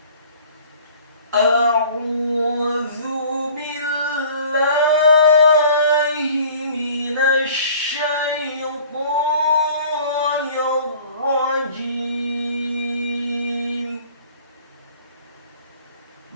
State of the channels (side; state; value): both; inverted; correlation -0.49